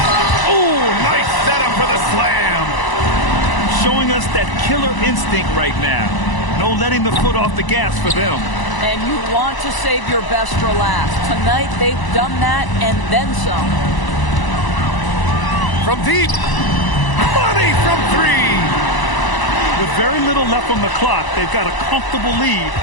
Ooh, nice setup for the slam. Showing us that killer instinct right now. No letting the foot off the gas for them. And you want to save your best for last. Tonight, they've done that and then some. From deep. Money from 3. With very little left on the clock, they've got a comfortable lead,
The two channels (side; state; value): right; late; 1.0 ms